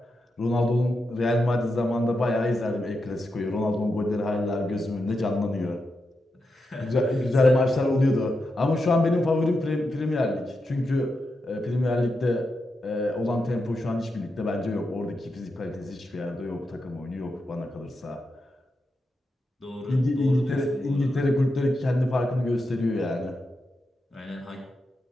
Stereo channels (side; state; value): both; normal; correlation 0.87